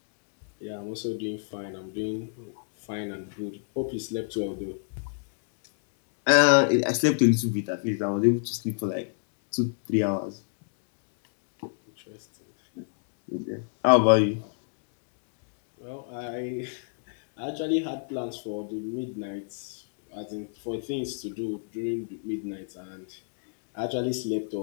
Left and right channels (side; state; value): right; silent; digital silence